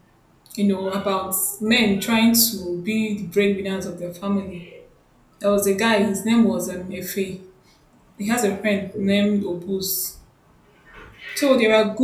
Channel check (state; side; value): identical; both; correlation 1.00